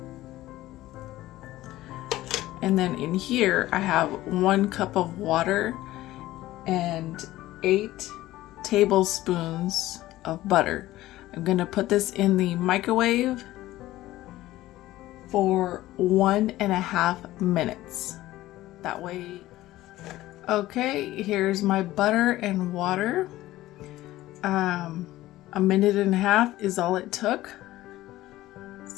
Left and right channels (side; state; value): right; quieter; 16.0 dB